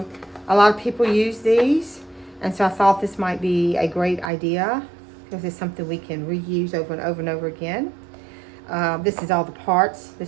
a lot of people use these, and so I thought this might be a great idea because it's something we can reuse over and over and over again. This is all the parts.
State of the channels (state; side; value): drops out; left; at 4.3 s